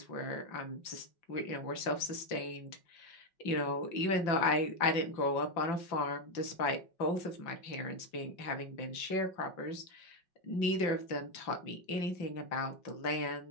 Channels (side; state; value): right; late; 5.8 ms